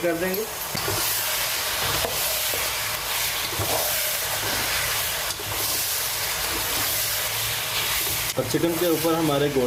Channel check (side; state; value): both; identical; correlation 1.00